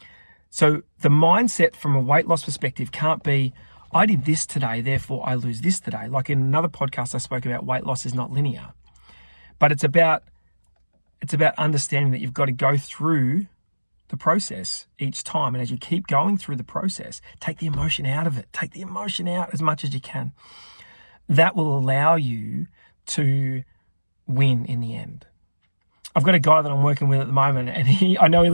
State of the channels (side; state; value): both; inverted; correlation -1.00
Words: So the mindset from a weight loss perspective can't be, I did this today, therefore I lose this today. Like in another podcast I spoke about, weight loss is not linear. But it's about understanding that you've got to go through the process each time. And as you keep going through the process, take the emotion out of it. Take the emotion out as much as you can. That will allow you to win in the end. I've got a guy that I'm working with at the moment, and I know he